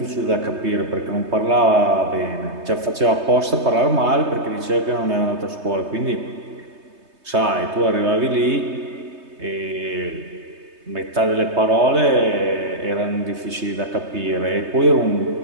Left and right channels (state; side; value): late; left; 3.2 ms